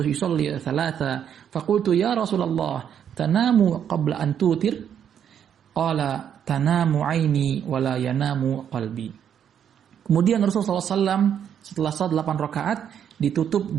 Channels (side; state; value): left; quieter; 8.8 dB